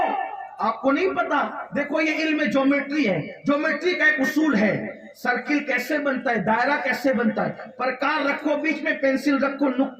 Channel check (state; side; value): identical; both; correlation 1.00